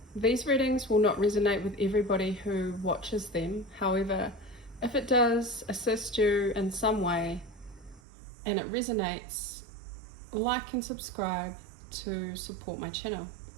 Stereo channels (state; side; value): drops out; left; at 8.0 s